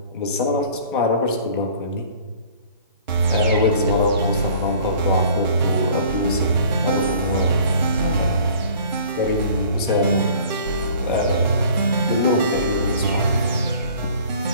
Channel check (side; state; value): both; inverted; correlation -0.50